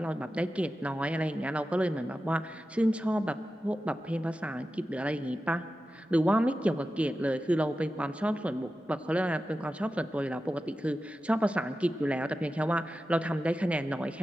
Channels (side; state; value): both; normal; correlation 0.92